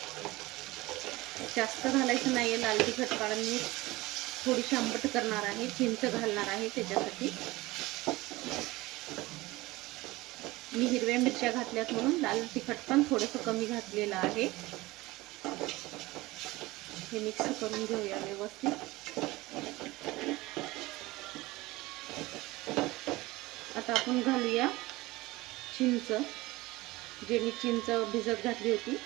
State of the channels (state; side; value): quieter; left; 20.2 dB